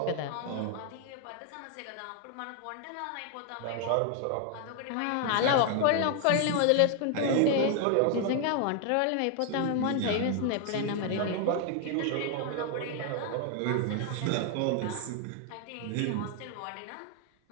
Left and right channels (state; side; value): different; both; correlation 0.00